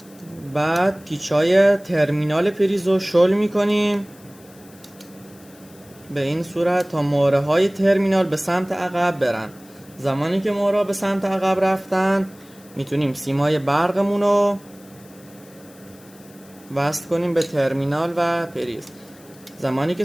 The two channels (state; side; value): noise; left; hiss, 25 dB below the sound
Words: بعد پیچای ترمینال پریز رو شل میکنیم به این صورت تا مهره های ترمینال به سمت عقب برن. زمانی که مهره به سمت عقب رفتن میتونیم سیمای برقمون رو وصل کنیم به ترمینال و پریز. زمانی که